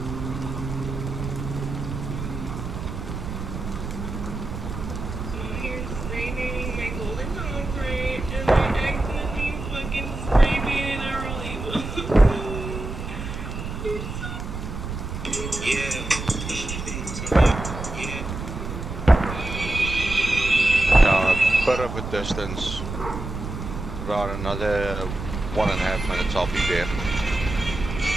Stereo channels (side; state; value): right; noise; rumble, 7 dB below the sound